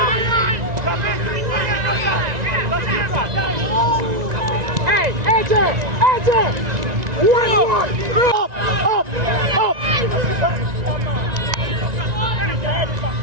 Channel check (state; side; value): late; left; 1.9 ms